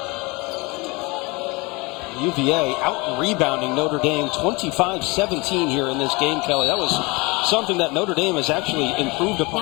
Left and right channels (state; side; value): quieter; right; 26.0 dB